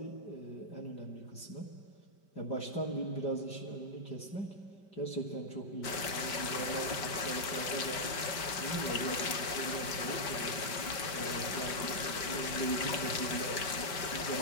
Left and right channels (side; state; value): right; late; 5.1 ms